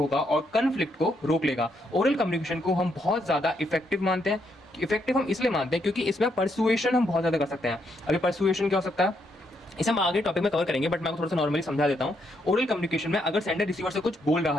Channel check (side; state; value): both; normal; correlation 0.76